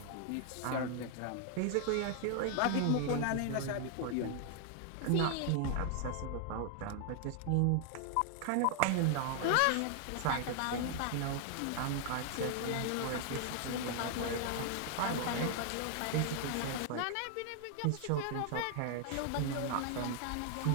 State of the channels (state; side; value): different; both; correlation 0.00